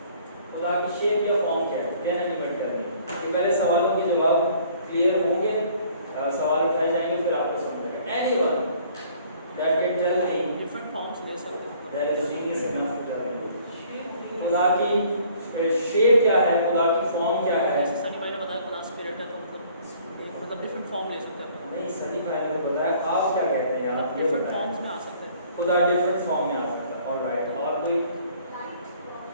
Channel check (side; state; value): both; inverted; correlation -0.57